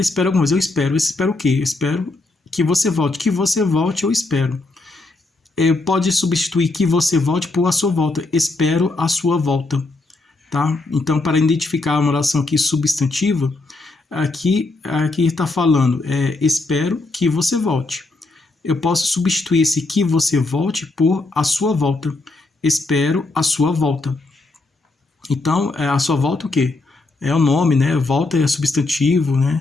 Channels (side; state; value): right; quieter; 3.3 dB